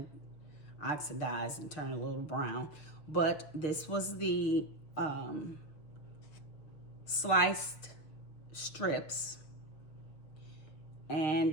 oxidize and turn a little brown. But this was the sliced strips.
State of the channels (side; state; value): right; late; 6.5 ms